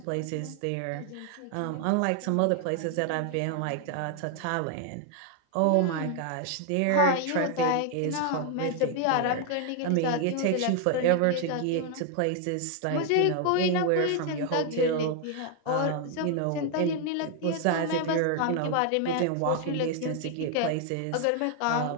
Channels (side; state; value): both; different; correlation 0.00